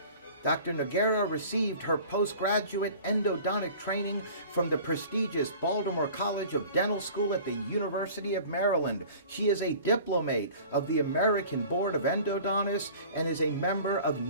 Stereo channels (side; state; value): both; inverted; correlation -0.44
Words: Dr. Noguera received her postgraduate endodontic training from the prestigious Baltimore College of Dental School at the University of Maryland. She is a diplomate of the American Board of Endodontists and is a member of